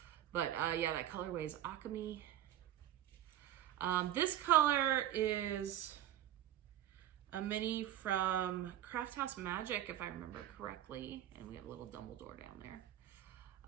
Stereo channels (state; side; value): quieter; left; 12.2 dB